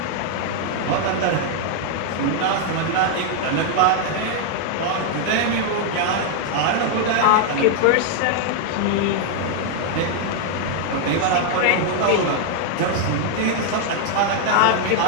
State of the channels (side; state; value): both; different; correlation 0.00